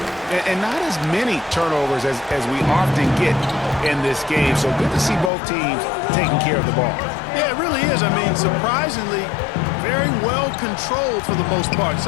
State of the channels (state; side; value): drops out; right; at 5.3 s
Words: And not as many turnovers as we often get in this game. So good to see both teams taking care of the ball. Yeah, it really is. I mean, surprisingly, very well controlled for the most part.